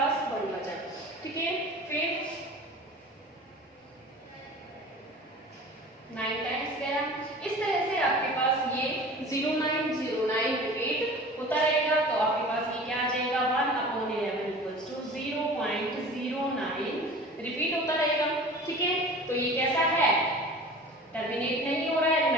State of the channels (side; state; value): both; normal; correlation 0.40